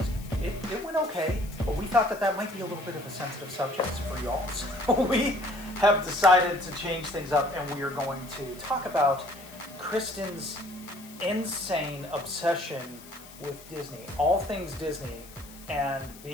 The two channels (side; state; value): left; noise; hiss, 19 dB below the sound